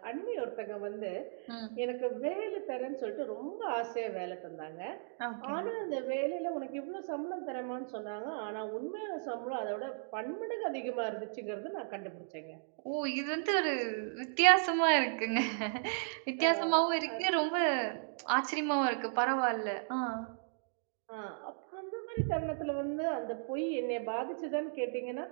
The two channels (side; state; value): left; silent; digital silence